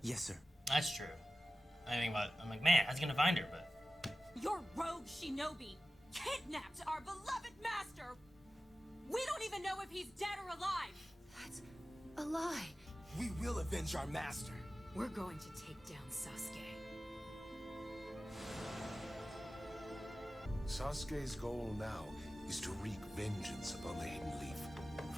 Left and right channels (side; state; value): both; normal; correlation 0.95